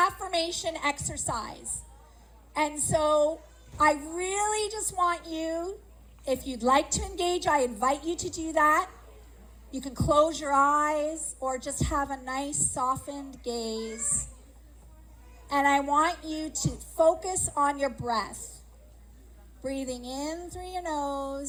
exercise. And so I really just want you, if you'd like to engage, I invite you to do that. You can close your eyes or just have a nice softened gaze. And I want you to focus on your breath. Breathing in through your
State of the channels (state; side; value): identical; both; correlation 1.00